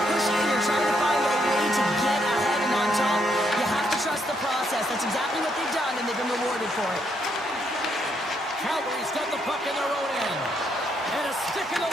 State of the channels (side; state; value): both; normal; correlation 0.75